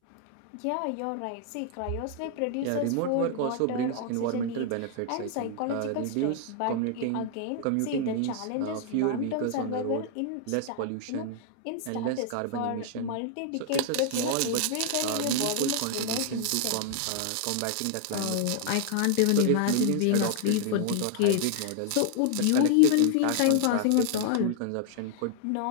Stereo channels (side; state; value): both; different; correlation 0.00